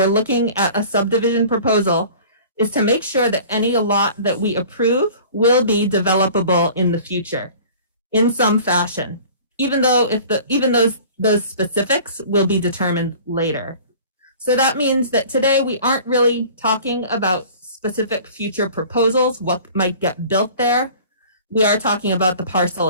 looking at a subdivision proposal, is to make sure that any lot that we approve will be developable in the future in some fashion, even those specifics will be determined later. So that means that today we aren't really talking about specific future proposals, what might get built there. We are talking about the parcel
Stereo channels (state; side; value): inverted; both; correlation -0.45